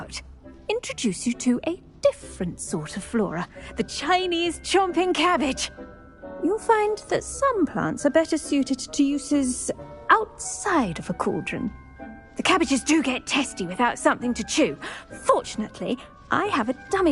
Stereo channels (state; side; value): identical; both; correlation 1.00